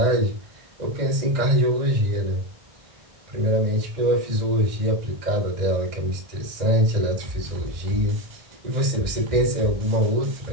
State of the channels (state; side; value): late; left; 2.0 ms